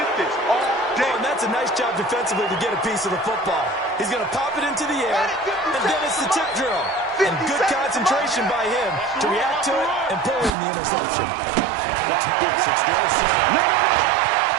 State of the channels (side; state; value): left; drops out; at 10.5 s